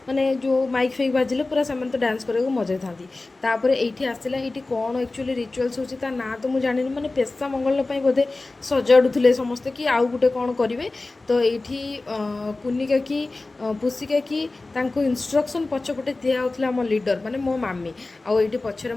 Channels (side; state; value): right; quieter; 3.2 dB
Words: ମାନେ ଯେଉଁ ମାଇକ୍ ଫାଇକ୍ ବାଜିଲେ ପୁରା ସେମାନେ ତ ଡ୍ୟାନ୍ସ କରିବାକୁ ମଜାଇଥାନ୍ତି। ତାପରେ ଏଇଠି ଆସିଲା, ଏଇଠି କ'ଣ ଆକ୍ଚୁଆଲି ରିଚୁଆଲ୍ସ ହେଉଛି ତା ନାଁ ତ ମୁଁ ଜାଣିନି, ମାନେ ପେସା ମଙ୍ଗଳ ପାଇଁ ବୋଧେ ସଜାଡ଼ୁଥିଲେ ସମସ୍ତେ କି ଆଉ ଗୋଟେ କ'ଣ କରିବେ। ତ ଏଇଠି କୁନି କାକି ପୁସି କାକି ତାଙ୍କୁ ଇନଷ୍ଟ୍ରକ୍ସନ୍ ପଛପଟେ ଦିଆହେଉଥିଲା ଆମ ଲିଡ଼ର ମାନେ ମୋ ମାମି। ଆଉ ଏଇଠି ପଛରେ